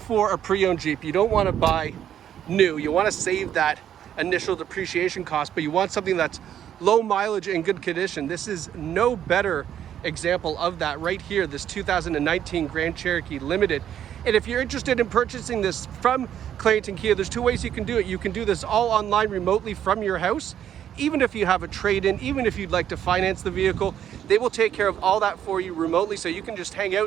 a pre-owned Jeep, you don't want to buy new, you want to save that initial depreciation cost, but you want something that's low mileage and good condition, this is no better example of that right here, this 2019 Grand Cherokee Limited. And if you're interested in purchasing this from Clarington Kia, there's two ways you can do it. You can do this all online remotely from your house. Even if you have a trade-in, even if you'd like to finance the vehicle, they will take care of all that for you remotely. So you can just hang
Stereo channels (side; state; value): left; quieter; 10.1 dB